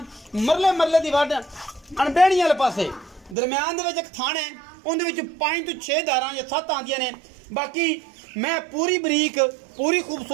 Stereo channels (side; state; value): left; drops out; at 3.4 s